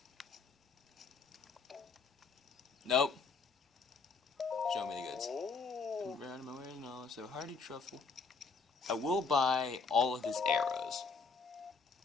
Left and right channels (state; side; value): quieter; right; 4.7 dB